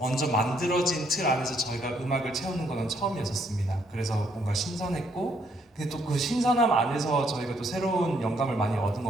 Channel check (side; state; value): both; normal; correlation 0.70